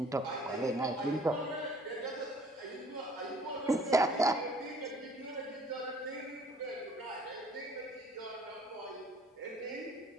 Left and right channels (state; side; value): normal; both; correlation 0.55